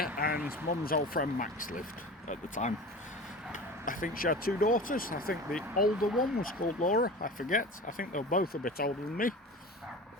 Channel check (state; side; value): normal; both; correlation 0.35